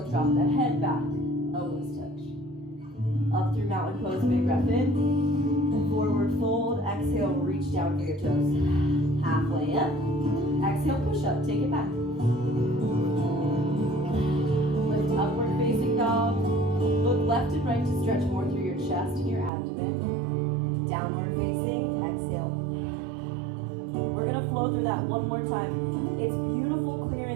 drop the head back, elbows touch. Up through mountain pose, big breath in. Forward fold, exhale, reach down for your toes. Halfway up, exhale, push up, take it back. Lift upward facing dog. Look left and right to stretch more through your chest and your abdomen. Downward facing, exhale. We're gonna flow through that one more time. It's beautiful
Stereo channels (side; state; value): left; drops out; at 19.5 s